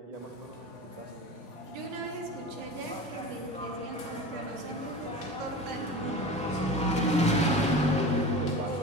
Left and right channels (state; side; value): normal; both; correlation 0.33